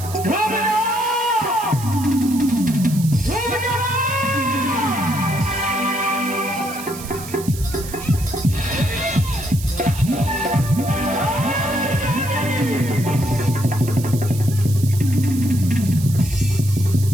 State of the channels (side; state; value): right; noise; hiss, 13 dB below the sound